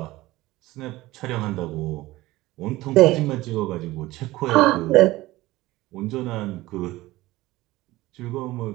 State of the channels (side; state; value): left; quieter; 18.1 dB